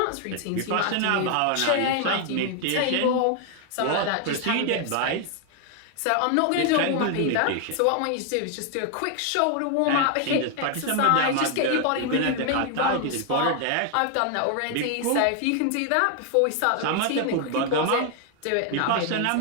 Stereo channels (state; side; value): different; both; correlation 0.00